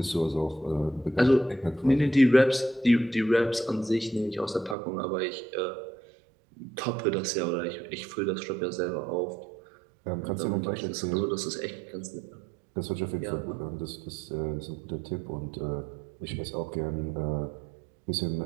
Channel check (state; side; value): drops out; left; at 4.8 s